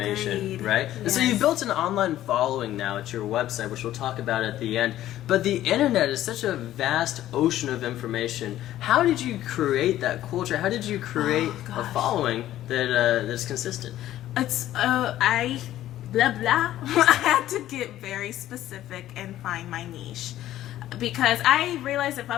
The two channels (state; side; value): quieter; right; 13.4 dB